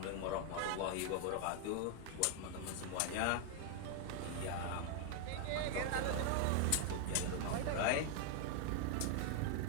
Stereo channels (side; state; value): both; different; correlation 0.00